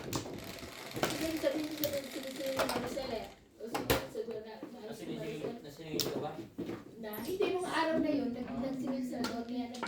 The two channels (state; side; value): identical; both; correlation 1.00